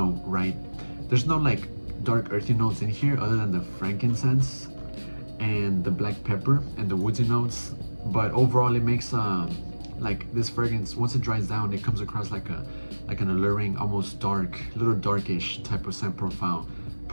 right? There's no like dark earthy notes in here other than the frankincense and the black pepper and the woodsy notes, but overall it makes like this fragrance, once it dries down, it comes across like an alluring, almost dark, little darkish type of scent profile.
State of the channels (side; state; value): both; inverted; correlation -1.00